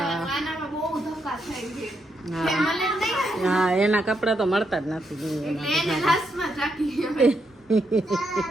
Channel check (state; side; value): normal; both; correlation 0.80